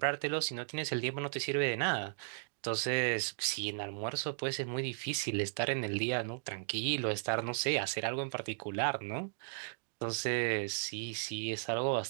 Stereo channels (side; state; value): left; silent; digital silence